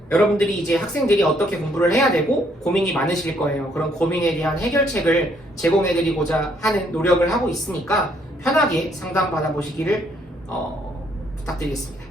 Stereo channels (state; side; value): normal; both; correlation 0.68